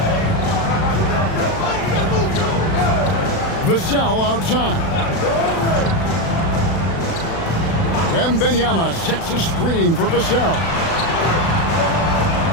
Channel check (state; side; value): late; right; 36 ms